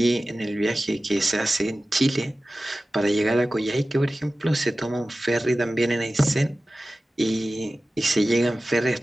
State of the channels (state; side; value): normal; both; correlation 0.96